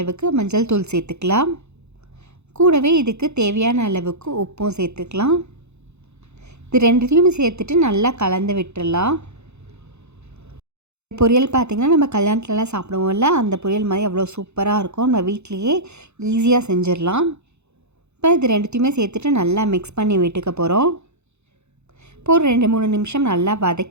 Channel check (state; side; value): late; left; 0.81 ms